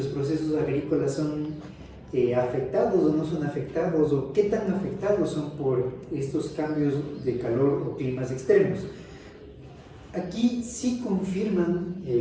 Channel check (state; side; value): identical; both; correlation 1.00